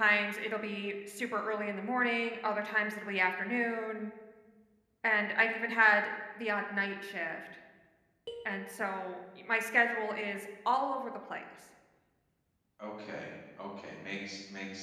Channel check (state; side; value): identical; both; correlation 1.00